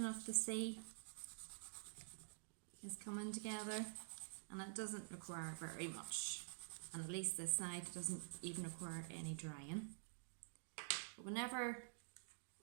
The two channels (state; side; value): silent; left; digital silence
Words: of the sea is coming together, and it doesn't require very much. And at least this side doesn't even require any drying. But whenever